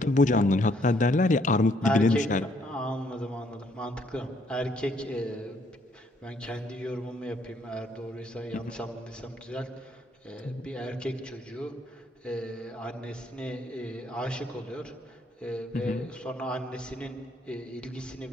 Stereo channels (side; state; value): both; normal; correlation 0.68